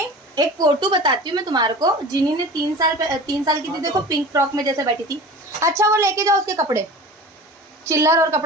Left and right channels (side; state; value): both; normal; correlation 0.37